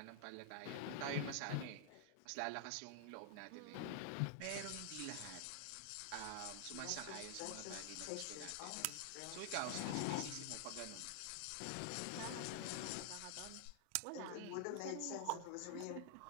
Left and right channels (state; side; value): different; both; correlation -0.01